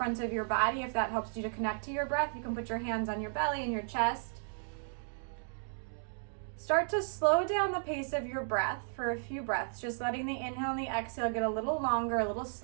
of your body, if that helps you to connect to your breath, you can put your hands on your belly and your chest. Start to slow down the pace of your breath for a few breaths, just letting the inhale and the exhale get a little longer, a little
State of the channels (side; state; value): left; silent; digital silence